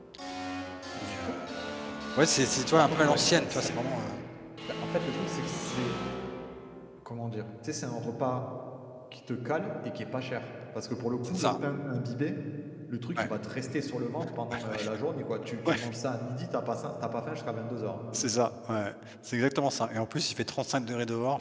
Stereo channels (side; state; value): both; identical; correlation 1.00